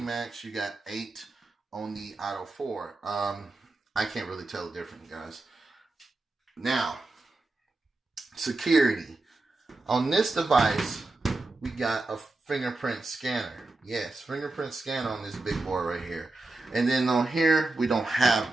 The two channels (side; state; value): left; quieter; 3.1 dB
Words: you got 8 on the Idol 4. I can't really tell the difference, guys. Now, security. On this device, we got a fingerprint scanner. Yes, fingerprint scanner on this big boy right here. And then on here, we don't have